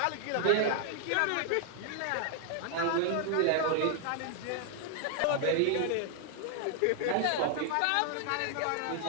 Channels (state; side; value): different; both; correlation 0.00